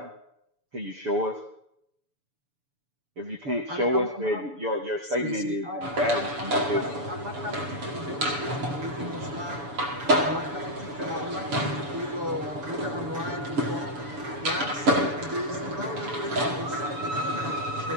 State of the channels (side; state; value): left; late; 7.0 ms